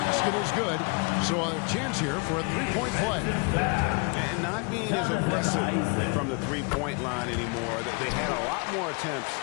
is good. So a chance here for a three-point play. And not being as aggressive from the three-point line anymore. They had a lot more attempts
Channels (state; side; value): quieter; right; 32.4 dB